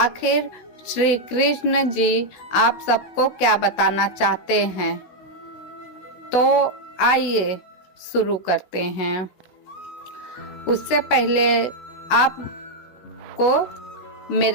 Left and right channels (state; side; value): late; right; 16 ms